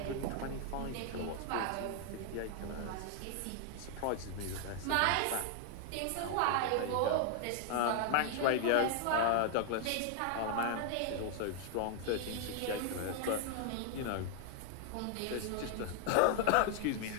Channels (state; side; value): different; both; correlation 0.00